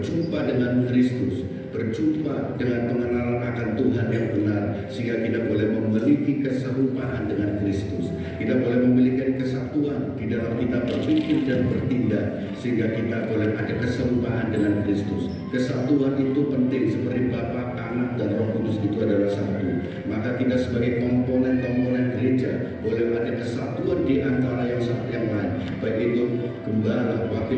dengan Kristus, berjumpa dengan pengenalan akan Tuhan yang benar, sehingga kita boleh memiliki keserupaan dengan Kristus. Kita boleh memiliki kesatuan di dalam kita berpikir dan bertindak, sehingga kita boleh ada keserupaan dengan Kristus. Kesatuan itu penting, seperti Bapa, Anak, dan Roh Kudus itu adalah satu. Maka kita sebagai komponen-komponen gereja boleh ada kesatuan di antara yang satu yang lain, baik itu gembala,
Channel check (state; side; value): identical; both; correlation 1.00